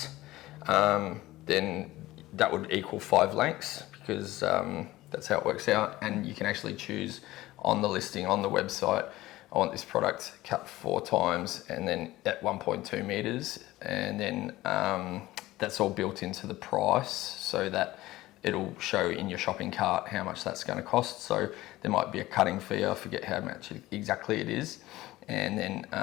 then that would equal 5 lengths, because that's how it works out. And you can actually choose on the listing on the website, I want this product cut 4 times and then at 1.2 meters, and then that's all built into the price, so that it'll show in your shopping cart how much that's going to cost. So there might be a cutting fee, I forget how much exactly it is, and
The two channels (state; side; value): quieter; right; 17.3 dB